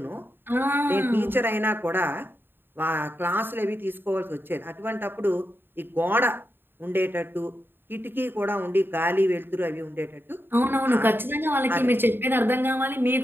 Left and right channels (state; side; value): late; left; 0.099 ms